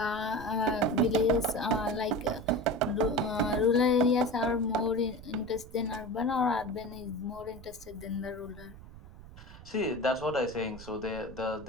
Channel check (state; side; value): noise; right; rumble, 17 dB below the sound